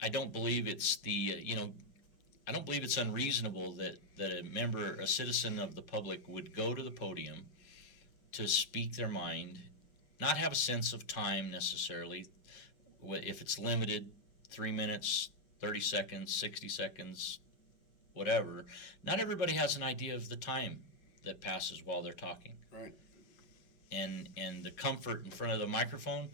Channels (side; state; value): right; late; 5.4 ms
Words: I don't believe it's I don't believe it's unreasonable that a citizen of the public would go to the podium to speak their mind, not have a sense of time necessarily, if it's limited, 3 minutes, 30 seconds, 60 seconds, whatever. Not everybody has an idea of the time that passes while they're talking. Right. And the comfort in front of the microphone,